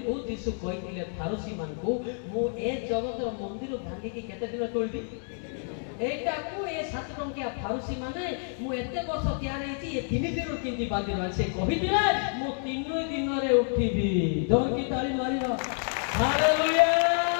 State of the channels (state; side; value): silent; right; 59 dB below the other